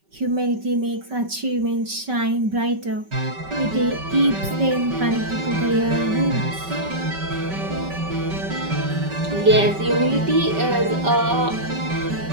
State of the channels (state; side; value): late; left; 5.2 ms